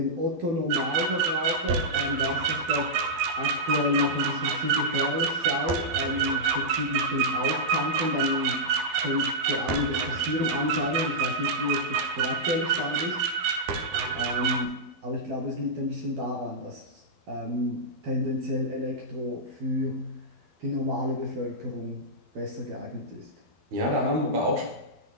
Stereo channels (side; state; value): left; late; 12 ms